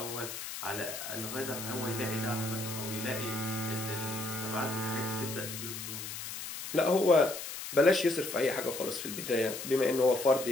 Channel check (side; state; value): left; noise; hiss, 8 dB below the sound